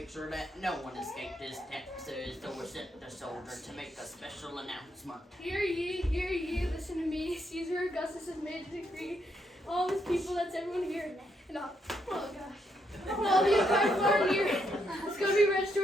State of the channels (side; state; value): both; normal; correlation 0.77